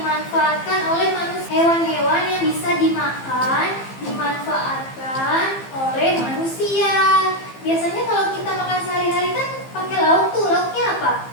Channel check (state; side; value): late; right; 15 ms